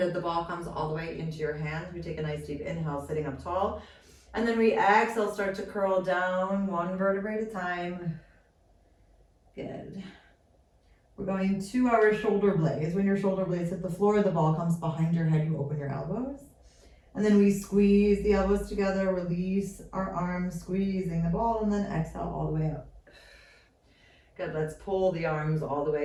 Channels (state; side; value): identical; both; correlation 1.00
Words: The ball comes all the way into your hands. We take a nice deep inhale, sitting up tall. And then we exhale, start to curl down 1 vertebrae at a time. Good. We're going to our shoulder blades. When your shoulder blades hit the floor, the ball comes behind your head, you open your elbows. And then we squeeze the elbows together, release our arms, squeezing the ball, and then exhale all the way up. Good, let's pull the arms all the